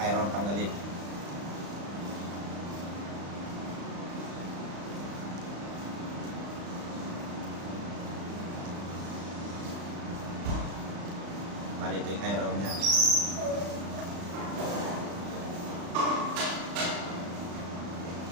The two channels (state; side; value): late; left; 35 ms